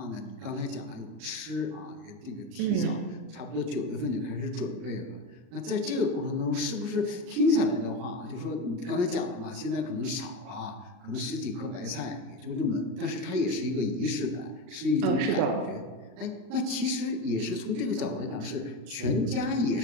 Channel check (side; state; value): left; late; 39 ms